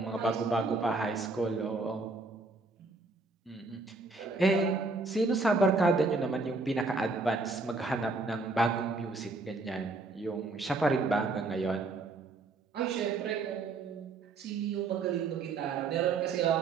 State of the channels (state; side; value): quieter; left; 3.6 dB